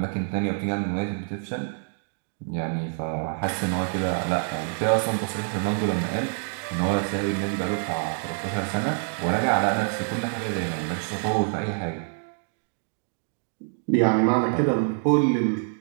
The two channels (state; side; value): silent; left; 57 dB below the other